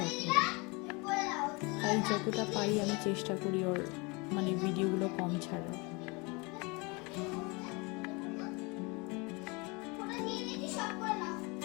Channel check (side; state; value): right; quieter; 27.9 dB